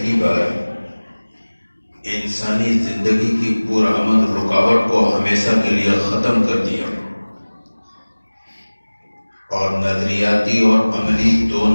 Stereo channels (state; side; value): inverted; both; correlation -1.00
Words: بار انسانی زندگی کی پرامن رکاوٹ کو ہمیشہ کے لیے ختم کر دیا اور نظریاتی اور عملی